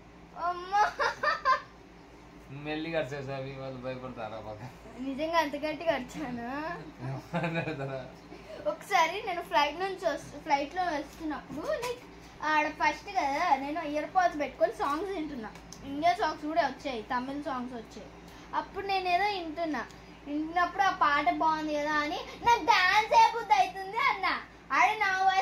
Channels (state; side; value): identical; both; correlation 1.00